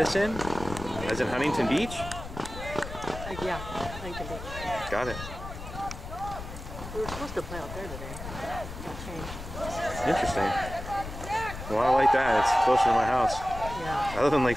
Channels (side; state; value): left; noise; rumble, 10 dB below the sound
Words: in, as in Huntington Beach. Yeah, Huntington Beach. Got it. We were supposed to play out there today. Got changed. Interesting. Well, I like that. It's closer to my house. Yeah. I live in Lake